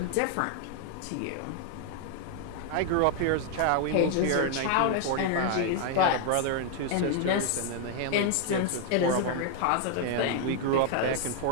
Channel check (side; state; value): both; different; correlation 0.00